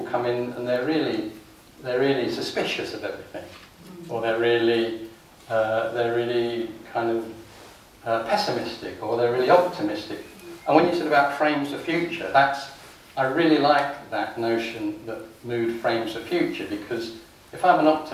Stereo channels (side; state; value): both; identical; correlation 1.00